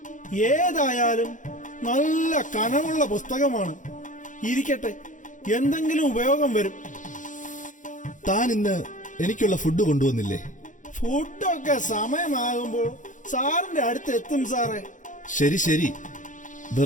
ഏതായാലും നല്ല കനമുള്ള പുസ്തകമാണ്. ഇരിക്കട്ടെ, എന്തെങ്കിലും ഉപയോഗം വരും. താൻ ഇന്ന് എനിക്കുള്ള ഫുഡ് കൊണ്ടുവന്നില്ലേ? ഫുഡൊക്കെ സമയമാകുമ്പോൾ സാറിന്റെ അടുത്ത് എത്തും സാറേ. ശരി ശരി,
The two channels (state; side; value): late; right; 0.37 ms